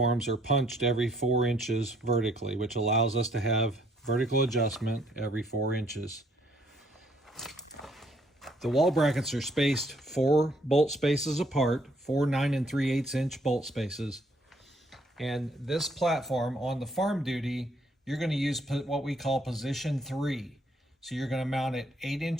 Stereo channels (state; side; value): normal; both; correlation 0.66